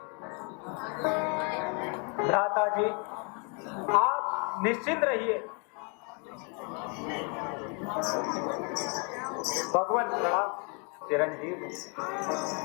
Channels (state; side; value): quieter; right; 35.9 dB